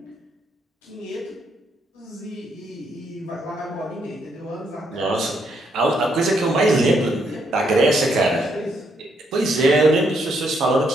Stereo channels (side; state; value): both; normal; correlation 0.75